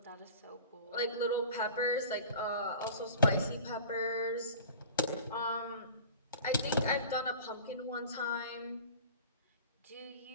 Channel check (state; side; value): inverted; both; correlation -0.40